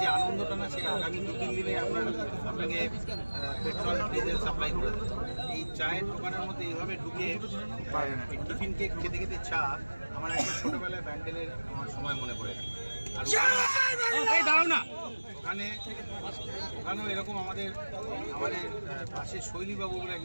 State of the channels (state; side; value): inverted; both; correlation -1.00